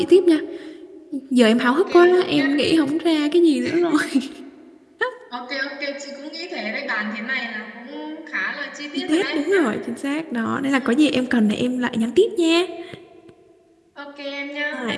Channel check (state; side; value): identical; both; correlation 1.00